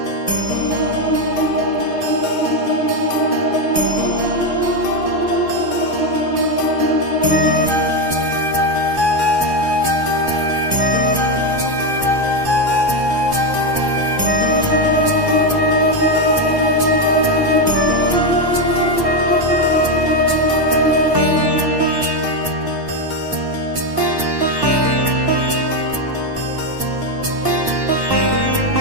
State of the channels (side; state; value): left; late; 1.1 ms